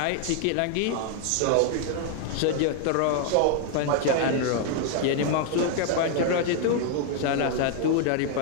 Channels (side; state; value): both; different; correlation 0.00